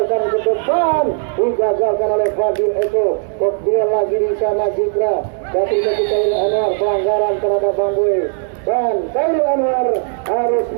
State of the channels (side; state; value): left; silent; digital silence